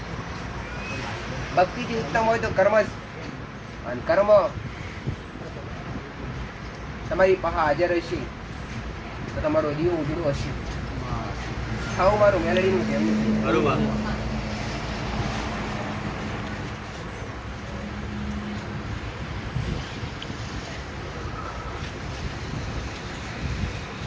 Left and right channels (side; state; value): both; identical; correlation 1.00